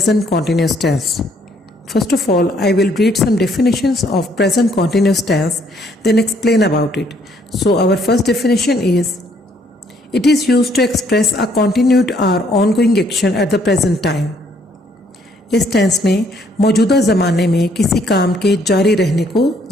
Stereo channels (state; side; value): normal; both; correlation 0.67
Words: continuous tense. First of all, I will read some definitions of present continuous tense, then explain about it. So our first definition is, it is used to express a continued or ongoing action at the present time. इस tense में मौजूदा ज़माने में किसी काम के जारी रहने को